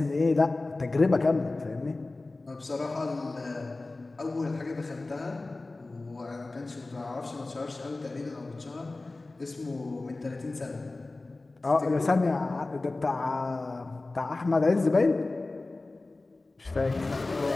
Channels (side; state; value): right; quieter; 3.2 dB